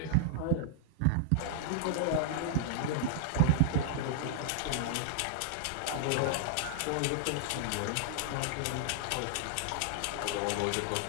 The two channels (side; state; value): both; different; correlation -0.01